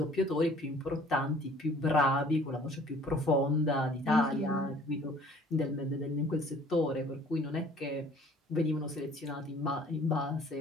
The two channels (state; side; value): normal; both; correlation 0.53